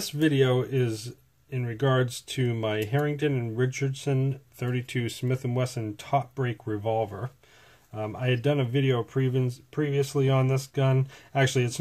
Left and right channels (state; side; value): identical; both; correlation 1.00